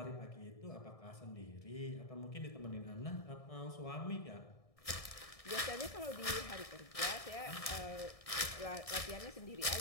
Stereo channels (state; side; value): late; right; 1.6 ms